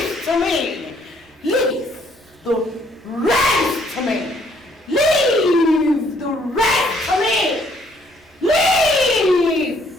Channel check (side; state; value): both; normal; correlation 0.66